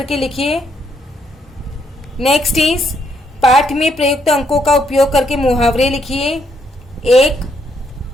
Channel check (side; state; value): both; normal; correlation 0.74